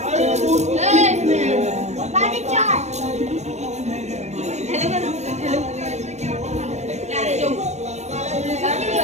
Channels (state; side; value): late; left; 0.33 ms